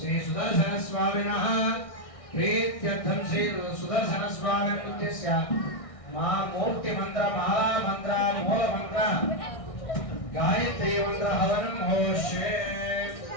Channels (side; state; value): right; late; 1.6 ms